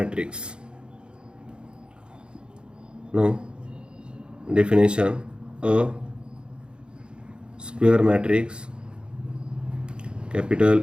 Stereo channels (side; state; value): left; late; 0.052 ms